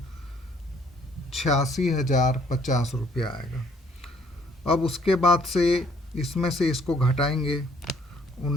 86,050 रुपया आएगा। अब उसके बाद से इसमें से इसको घटाएंगे।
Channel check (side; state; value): both; normal; correlation 0.63